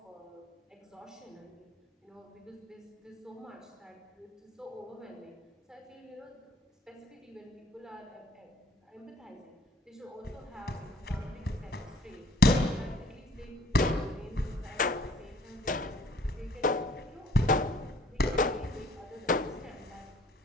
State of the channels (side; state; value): both; normal; correlation 0.57